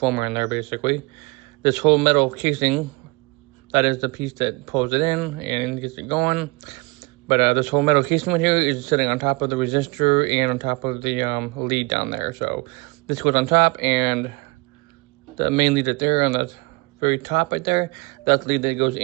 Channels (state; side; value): quieter; left; 25.8 dB